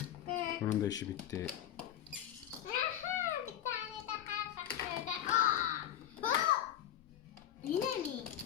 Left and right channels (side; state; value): right; quieter; 11.4 dB